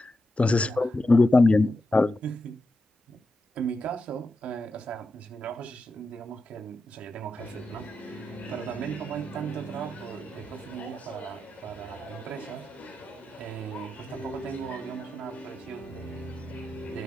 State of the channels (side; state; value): both; normal; correlation 0.88